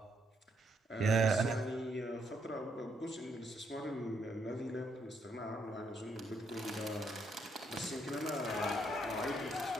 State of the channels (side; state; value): both; normal; correlation 0.74